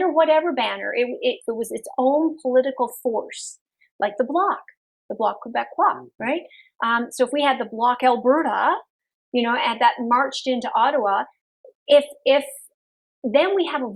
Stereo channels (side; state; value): both; identical; correlation 1.00